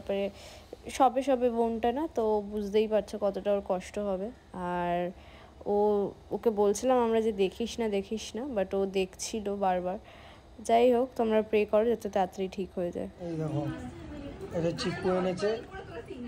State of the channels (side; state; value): both; identical; correlation 1.00